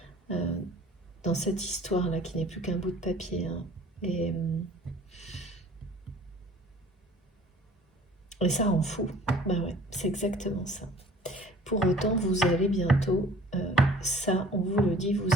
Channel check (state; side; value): normal; both; correlation 0.49